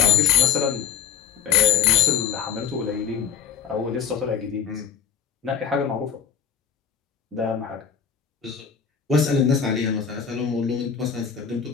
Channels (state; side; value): quieter; right; 7.4 dB